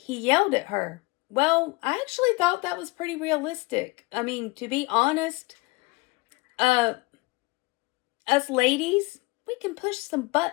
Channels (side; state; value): right; quieter; 25.5 dB